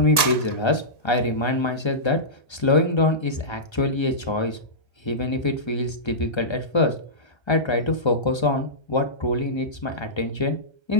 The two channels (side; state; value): right; late; 1.2 ms